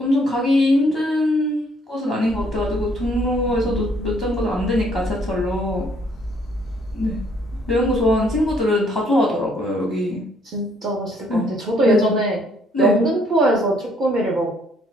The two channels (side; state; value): both; normal; correlation 0.66